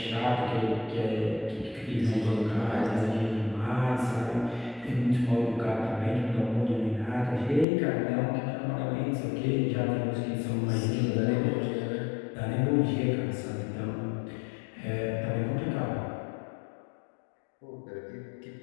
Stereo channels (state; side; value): drops out; right; at 7.7 s